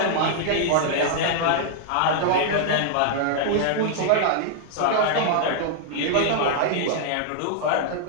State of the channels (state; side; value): different; both; correlation -0.01